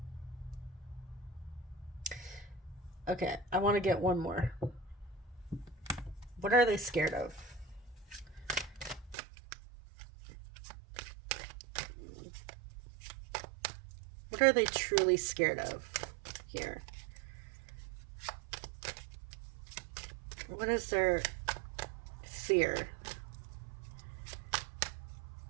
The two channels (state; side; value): drops out; left; at 9.2 s